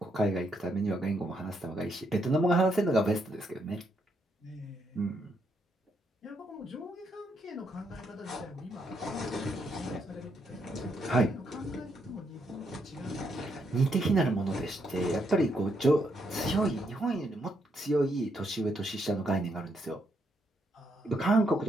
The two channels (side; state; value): both; normal; correlation 0.77